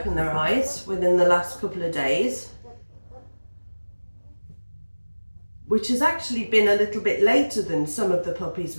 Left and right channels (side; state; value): both; inverted; correlation -1.00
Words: their eyes within the last couple of days, which has actually been a little bit later than some of the puppies